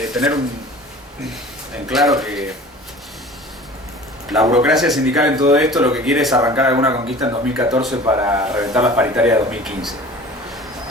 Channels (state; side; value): normal; both; correlation 0.42